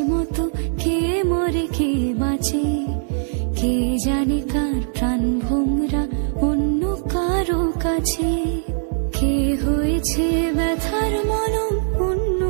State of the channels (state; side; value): silent; left; digital silence